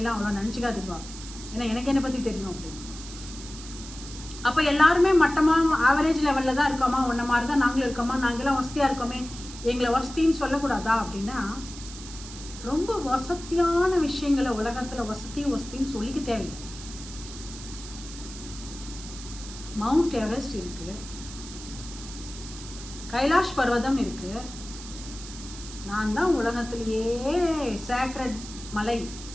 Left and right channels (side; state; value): right; noise; hiss, 13 dB below the sound